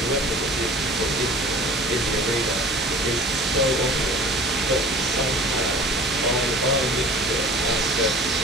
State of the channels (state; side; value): normal; both; correlation 0.43